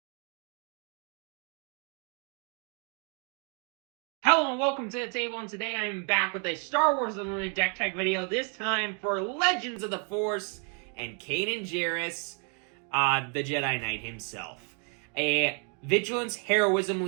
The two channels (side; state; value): left; quieter; 39.7 dB